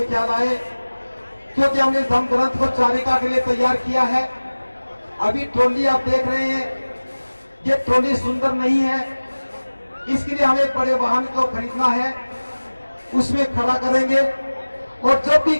ख्याल आए, क्योंकि हमने धम्म ग्रंथ को चारिका के लिए तैयार किया है। अभी ट्रॉली आप देख रहे हैं, ये ट्रॉली सुंदर नहीं है, इसके लिए हमें बड़े वाहन को खरीदना है, उसमें खड़ा करेंगे। और जब भी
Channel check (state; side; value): inverted; both; correlation -1.00